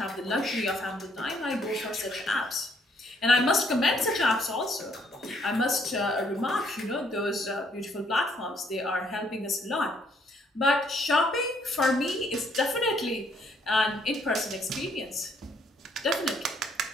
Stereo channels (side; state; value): both; normal; correlation 0.68